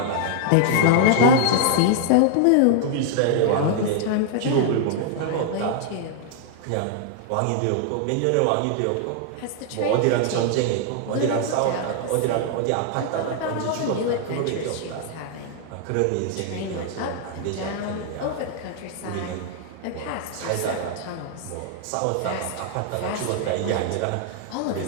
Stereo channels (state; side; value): different; both; correlation -0.01